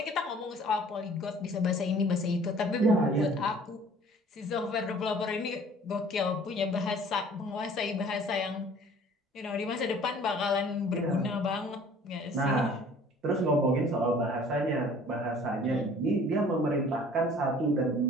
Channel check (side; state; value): both; normal; correlation 0.51